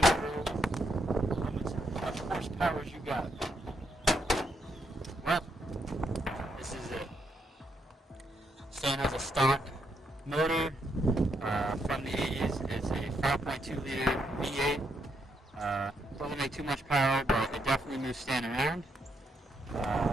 bro? How much horsepower you got? Well, this is it. Stand has a stock motor from the 80s. It's a 5.2 liter V8. Doesn't make too much power, but it definitely moves Stan around.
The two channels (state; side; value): normal; both; correlation 0.78